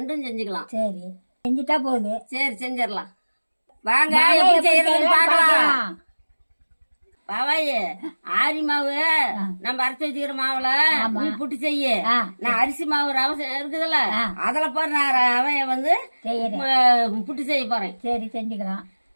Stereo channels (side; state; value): both; inverted; correlation -1.00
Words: செஞ்சுக்கலாம். சரி, செஞ்சுட்டா போகுது. சரி, செஞ்சிடலாம். வாங்க எப்படி செய்யறதுன்னு பார்க்கலாம். பாவாயே, ஆரி மாவு நம்ம அரைச்சி வச்சுக்கிற மாவுல நீ புட்டு செய்ய. நான் அரிசி மாவு ரவை இருக்குதுல்ல, அதுல போற நான் ரவைய வந்து புட்டு செய்ய போறேன். சரி, செஞ்சுக்கலாம்.